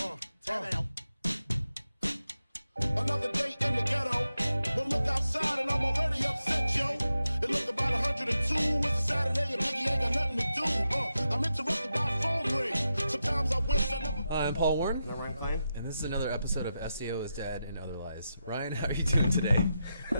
Another day in the ghetto. But look outside and I'm already upset, yo. It look about 102. It's a Saturday and Biggie ain't got nothing to do. I'm interrupted by a phone ring. Sometimes I wish I never... I'm Paul Warren. I'm Ryan Klein. And this is another episode of SEO is Dead and Other Lies. Ryan, how are you doing today?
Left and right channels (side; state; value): both; inverted; correlation -0.88